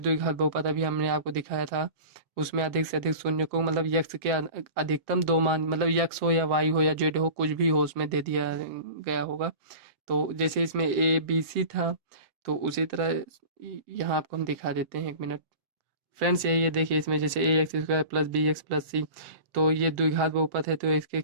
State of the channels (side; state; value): left; late; 7.6 ms